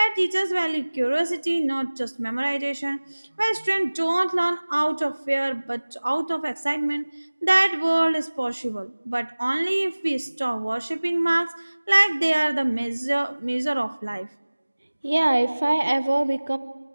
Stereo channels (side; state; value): both; inverted; correlation -1.00